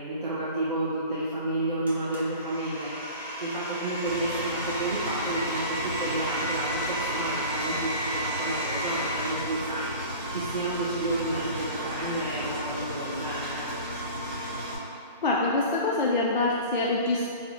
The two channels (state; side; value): inverted; both; correlation -0.38